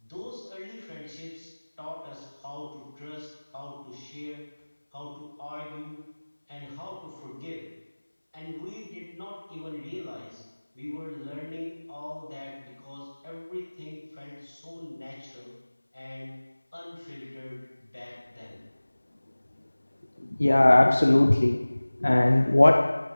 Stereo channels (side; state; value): both; inverted; correlation -1.00